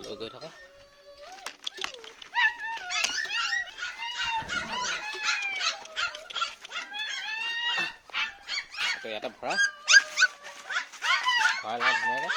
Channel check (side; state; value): both; identical; correlation 1.00